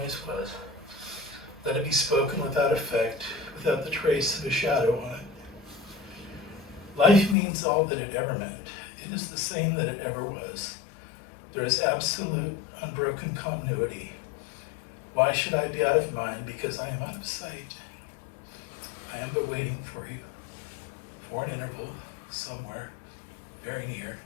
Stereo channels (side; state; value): right; drops out; at 7.4 s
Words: was. Let it be spoken without effect, without the trace of a shadow on it. Life means all that it ever meant. It is the same that it ever was. There is absolute, unbroken continuity. Why should I be out of mind? Because I am out of sight. I am but waiting for you, for an interval, somewhere, very near,